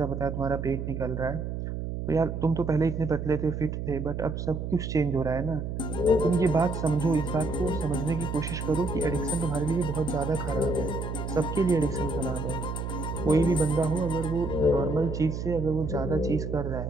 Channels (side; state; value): right; noise; hum, 4 dB below the sound